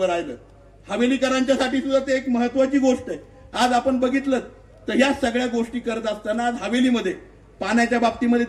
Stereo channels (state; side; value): identical; both; correlation 1.00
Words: राहिलं. हवेलीकरांच्यासाठी सुद्धा ते एक महत्वाची गोष्ट आहे. आज आपण बघितलं तर ह्या सगळ्या गोष्टी करत असताना आज हवेलीमध्ये पाण्याच्या बाबतीमध्ये